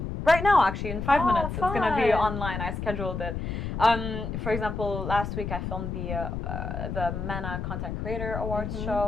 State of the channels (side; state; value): left; noise; rumble, 4 dB below the sound